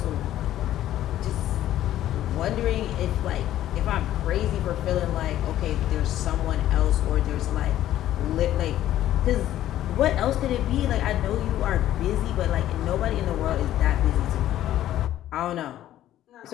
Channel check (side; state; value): right; quieter; 12.9 dB